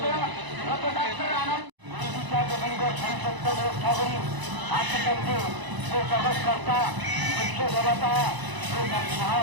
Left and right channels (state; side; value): late; left; 1.0 ms